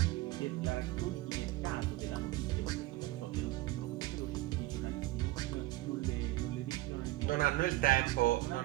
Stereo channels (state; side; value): quieter; left; 17.9 dB